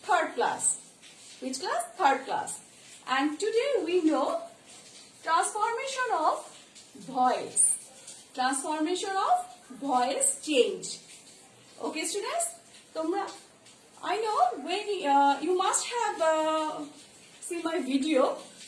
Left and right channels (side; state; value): both; identical; correlation 1.00